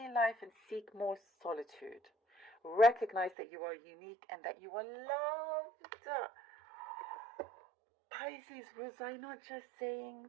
life and seek more solitude. Recognize that you are unique and that you are loved. Pisces, was I not just saying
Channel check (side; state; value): left; drops out; at 3.4 s